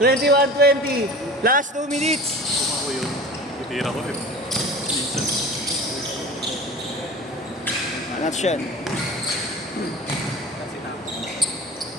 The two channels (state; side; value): normal; both; correlation 0.37